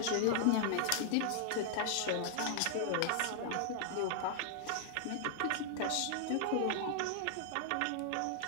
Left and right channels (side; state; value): both; different; correlation -0.01